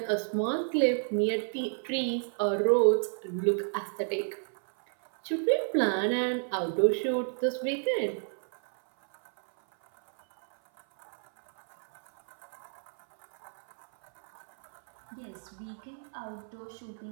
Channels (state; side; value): silent; left; 57 dB below the other